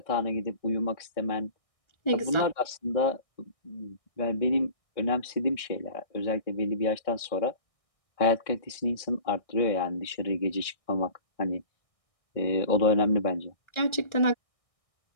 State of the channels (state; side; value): late; right; 1.6 ms